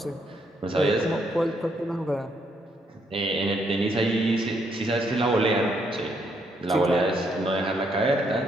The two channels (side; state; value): both; normal; correlation 0.74